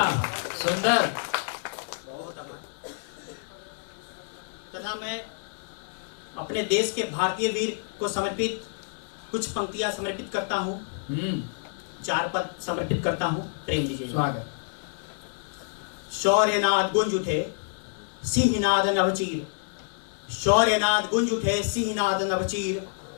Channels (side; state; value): right; silent; 60 dB below the other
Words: सुंदर। तथा मैं अपने देश के भारतीय वीर को समर्पित कुछ पंक्तियां समर्पित करता हूँ। 4 पद समर्पित करता हूँ। प्रेम दीजिए। स्वागत। शौर्यनाद गुंज उठे सिंहनाद नवचीर, शौर्यनाद गुंज उठे सिंहनाद नवचीर,